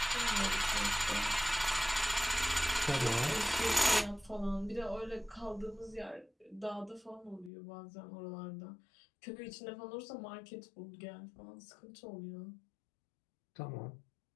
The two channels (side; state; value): right; drops out; at 7.5 s